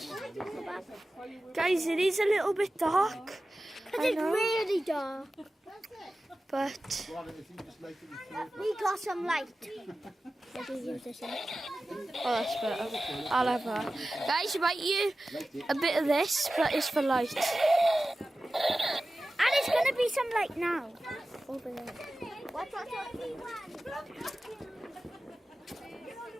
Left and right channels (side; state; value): both; normal; correlation 0.95